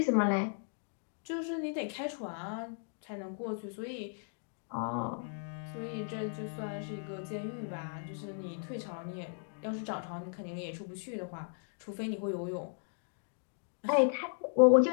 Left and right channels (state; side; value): silent; right; digital silence